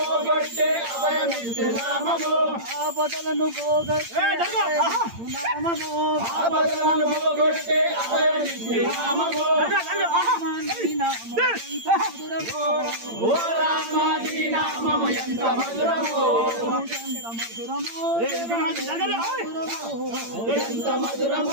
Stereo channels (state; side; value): late; left; 8.8 ms